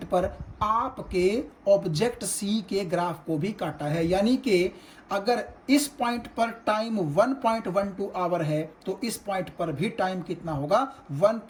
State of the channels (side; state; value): both; identical; correlation 1.00